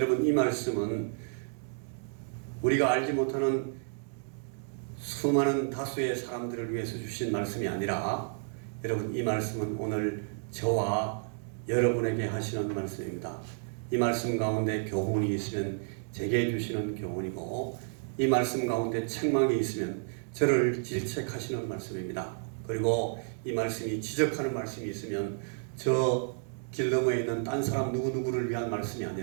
이 말씀은 우리가 알지 못하는 수많은 다수의 사람들을 위해서 주신 말씀이 아니라 여러분 이 말씀은 오늘 저와 여러분에게 하시는 말씀입니다. 이 말씀 가운데 교훈이 있으면 제게 주시는 교훈이고 이 말씀 가운데 책망이 있으면 저를 질책하시는 말씀입니다. 그리고 이 말씀이 지적하는 말씀이 있으면 저 길 너머에 있는 딴 사람 누구누구를 위한 말씀이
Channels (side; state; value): left; silent; 57 dB below the other